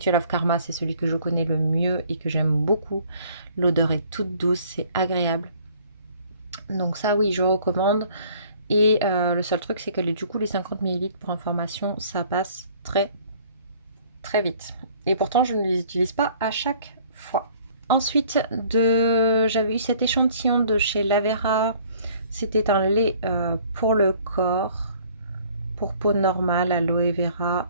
of Karma, c'est celui que je connais le mieux et que j'aime beaucoup. L'odeur est toute douce, c'est agréable. Donc ça, oui, je recommande. Et le seul truc, c'est que du coup, les 50 ml pour information, ça passe très très vite. Et pourtant, je ne les utilise pas à chaque fois. Ensuite, j'avais eu cet échantillon de chez Lavera. C'était un lait pour le corps, pour peau normale, aloe vera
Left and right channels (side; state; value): both; inverted; correlation -0.56